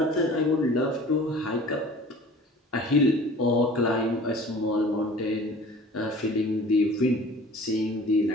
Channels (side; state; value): both; normal; correlation 0.45